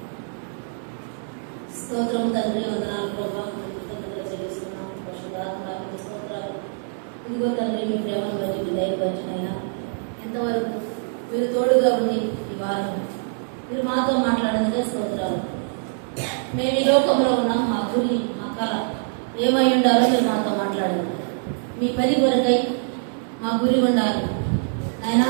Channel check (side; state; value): left; silent; digital silence